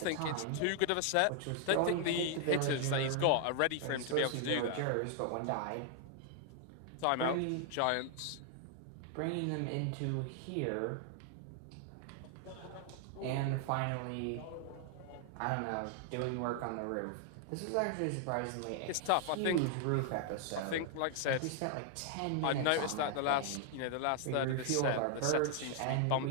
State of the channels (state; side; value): different; both; correlation 0.00